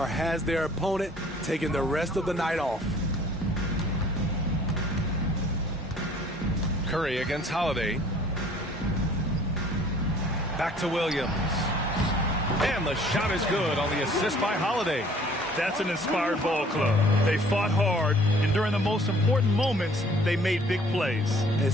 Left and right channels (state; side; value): normal; both; correlation 0.55